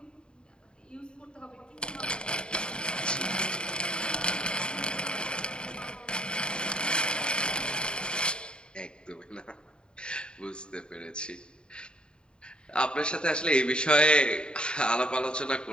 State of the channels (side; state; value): right; late; 0.051 ms